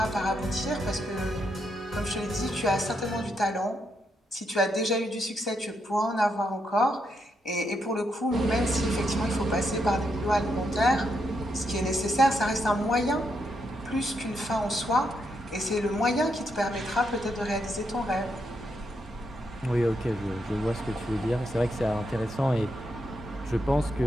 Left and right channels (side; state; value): both; normal; correlation 0.80